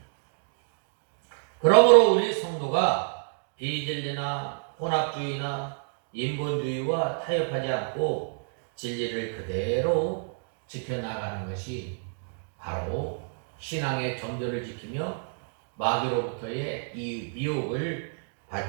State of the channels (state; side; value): silent; left; digital silence